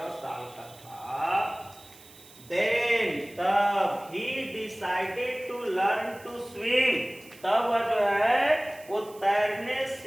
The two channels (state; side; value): noise; right; hiss, 22 dB below the sound